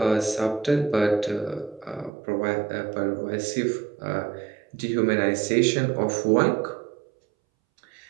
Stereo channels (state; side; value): drops out; left; at 2.1 s